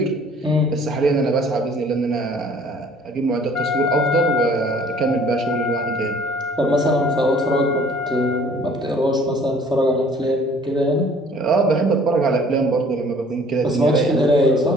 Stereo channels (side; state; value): both; normal; correlation 0.54